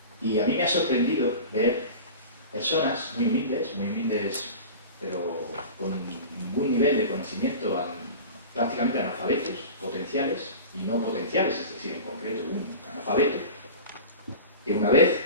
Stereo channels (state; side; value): inverted; both; correlation -0.34